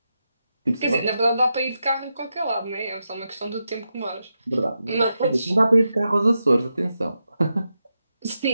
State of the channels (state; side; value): inverted; both; correlation -0.87